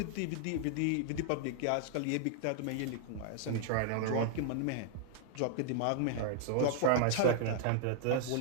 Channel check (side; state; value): both; different; correlation -0.01